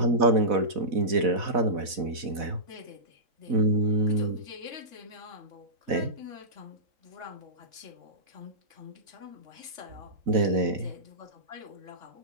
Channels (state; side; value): late; left; 4.1 ms